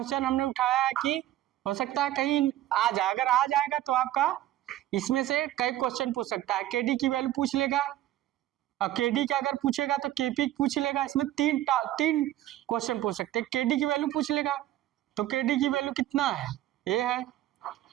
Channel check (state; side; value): quieter; left; 14.0 dB